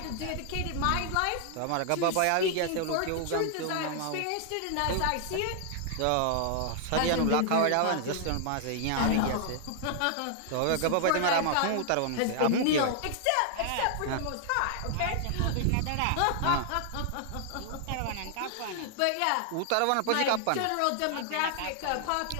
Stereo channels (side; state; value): both; different; correlation 0.00